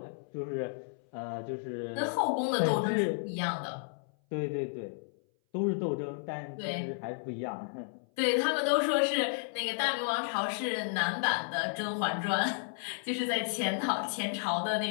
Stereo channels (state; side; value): silent; right; 56 dB below the other